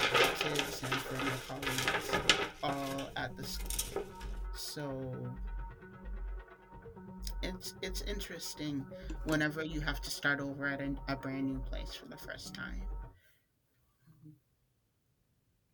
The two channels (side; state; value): both; identical; correlation 1.00